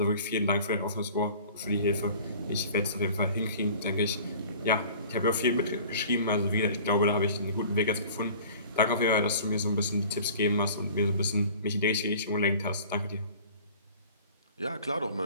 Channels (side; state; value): both; inverted; correlation -0.45